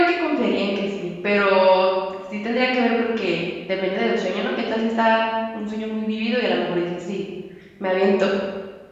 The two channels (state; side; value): identical; both; correlation 1.00